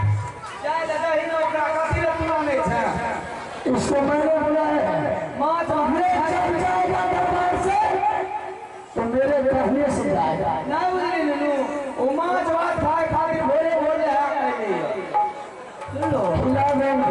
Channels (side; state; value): both; identical; correlation 1.00